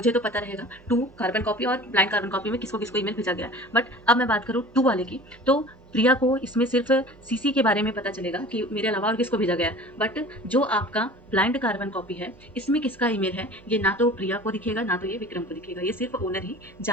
तो पता रहेगा टू कार्बन कॉपी और ब्लाइंड कार्बन कॉपी में किसको किसको ईमेल भेजा गया। बट अब मैं बात करूँ टू वाले की, तो प्रिया को इसमें सिर्फ सीसी के बारे में पता चलेगा कि मेरे अलावा और किसको भेजा गया। बट जो आपका ब्लाइंड कार्बन कॉपी है इसमें किसका ईमेल है ये ना तो प्रिया को दिखेगा ना तो ये विक्रम को दिखेगा, ये सिर्फ ओनर ही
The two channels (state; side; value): noise; right; hum, 25 dB below the sound